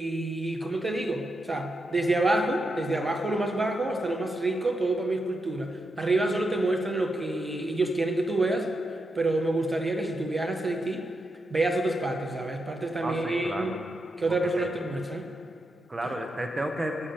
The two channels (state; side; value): normal; both; correlation 0.85